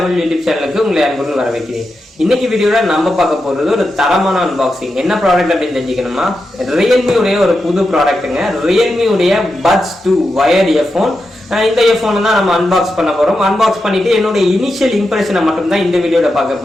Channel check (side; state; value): both; normal; correlation 0.88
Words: யூடியூப் சேனலுக்கு உங்களை அன்புடன் வரவேற்கிறேன். இன்னைக்கு வீடியோல நம்ம பார்க்க போறது ஒரு தரமான அன்பாக்சிங். என்ன ப்ராடக்ட் அப்படின்னு தெரிஞ்சுக்கணுமா, Realme உடைய ஒரு புது ப்ராடக்ட்டுங்க. Realme உடைய Buds 2 வயர்ட் இயர்போன். இந்த இயர்போன் தான் நம்ம அன்பாக்ஸ் பண்ண போறோம். அன்பாக்ஸ் பண்ணிட்டு என்னோட இனிஷியல் இம்ப்ரெஷனை மட்டும் தான் இந்த வீடியோல பார்க்க